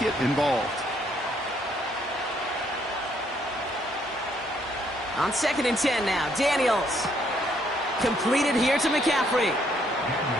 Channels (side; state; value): both; normal; correlation 0.69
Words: involved. On 2nd and 10 now, Daniels. Completed here to McCaffrey.